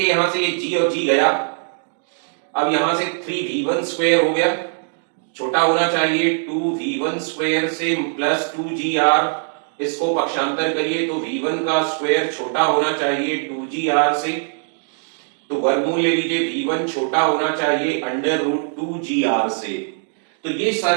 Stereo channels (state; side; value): silent; left; 65 dB below the other